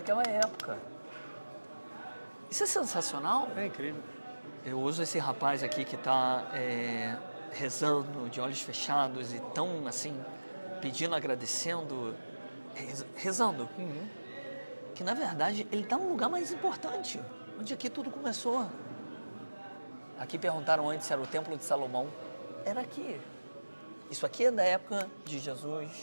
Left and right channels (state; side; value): inverted; both; correlation -1.00